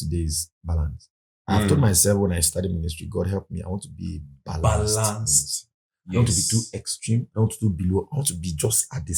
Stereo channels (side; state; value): both; identical; correlation 1.00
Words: is balance. I've told Mm. myself when I started ministry, God help me. I want to be balanced. Balanced. I don't want to be too extreme. I don't want to be below. I want to be just at the